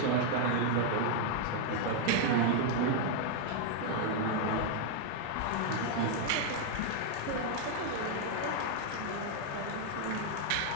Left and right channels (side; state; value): both; different; correlation 0.00